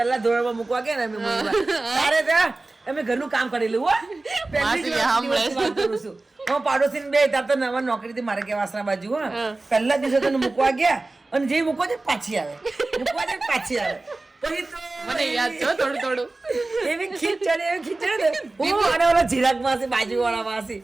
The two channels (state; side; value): quieter; left; 3.2 dB